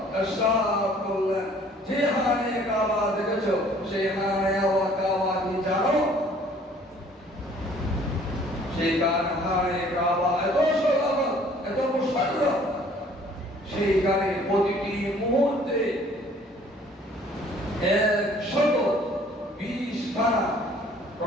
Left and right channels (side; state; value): both; normal; correlation 0.56